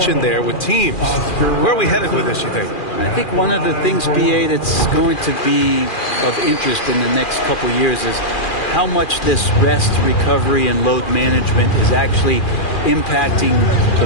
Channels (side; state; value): right; late; 2.4 ms